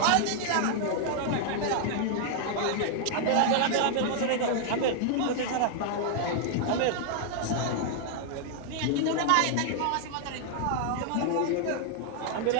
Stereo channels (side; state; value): both; different; correlation -0.01